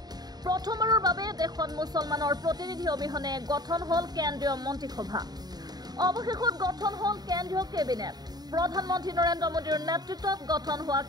প্ৰথমবাৰৰ বাবে দেশত মুছলমানৰ প্ৰতিনিধি অবিহনে গঠন হল কেন্দ্ৰীয় মন্ত্ৰীসভা অৱশেষত গঠন হল কেন্দ্ৰীয় কেবিনেট প্ৰধানমন্ত্ৰী নৰেন্দ্ৰ মোদীৰ নেতৃত্বত গঠন হোৱা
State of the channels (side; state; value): left; late; 0.19 ms